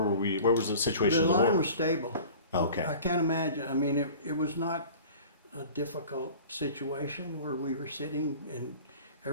we? Where was the situation? The of the line war? was stable. Okay. I can't imagine. I mean, it was not a difficult situation where we were sitting, and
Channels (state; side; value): inverted; both; correlation -0.42